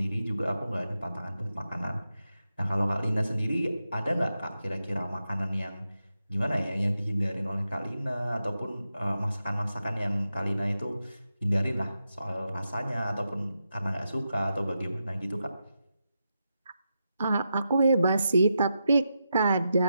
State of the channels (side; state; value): both; inverted; correlation -0.87